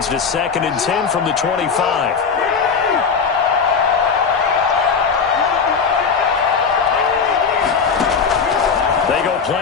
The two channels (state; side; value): quieter; right; 5.8 dB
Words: to 2nd and 10 from the 25. They go